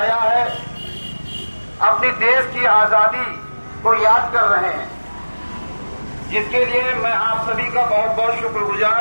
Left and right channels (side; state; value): both; inverted; correlation -1.00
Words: है, अपनी देश की आजादी को याद कर रहे हैं, जिसके लिए मैं आप सभी का बहुत बहुत शुक्रगुजार